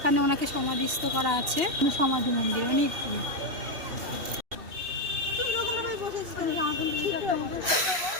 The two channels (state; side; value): late; left; 3.0 ms